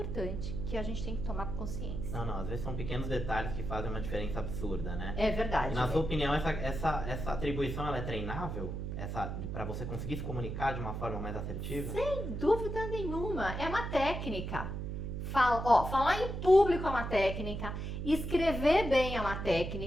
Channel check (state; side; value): noise; right; hum, 4 dB below the sound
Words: que a gente tem que tomar consciência. Não, às vezes são pequenos detalhes que fazem uma diferença absurda, né? É verdade. E na sua opinião, essa atribuição, ela é treinável? Para você conseguir se comunicar de uma forma mais assertiva? Sem dúvida nenhuma, é uma técnica. Falar em público é uma técnica, escrever bem é uma